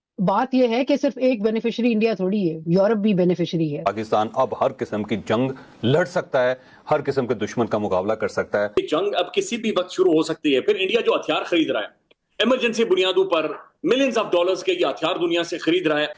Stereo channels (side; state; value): both; identical; correlation 1.00